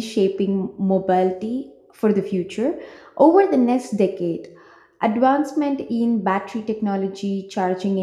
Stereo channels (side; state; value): both; identical; correlation 1.00